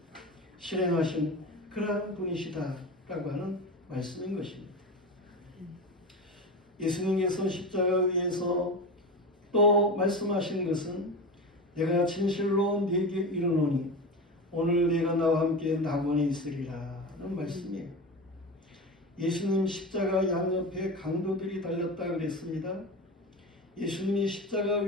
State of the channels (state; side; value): normal; both; correlation 0.25